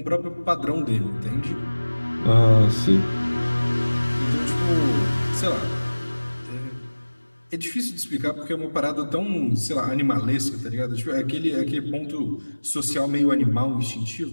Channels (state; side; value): inverted; both; correlation -1.00